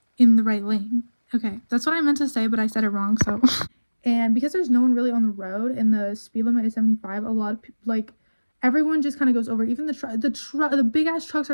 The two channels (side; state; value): both; inverted; correlation -1.00